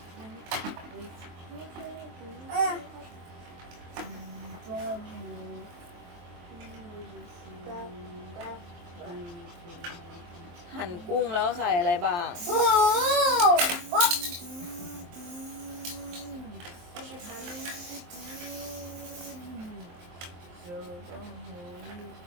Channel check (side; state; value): left; late; 23 ms